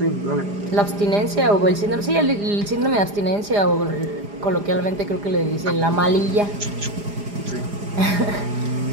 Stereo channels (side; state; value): left; late; 4.9 ms